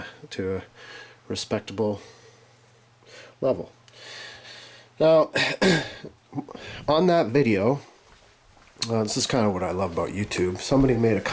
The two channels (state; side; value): identical; both; correlation 1.00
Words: to a respectable level. Now, on that video, this is kind of what I love about YouTube. Somebody made a